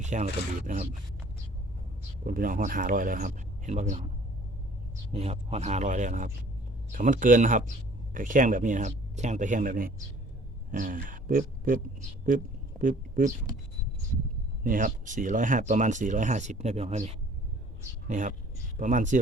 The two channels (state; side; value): normal; both; correlation 0.53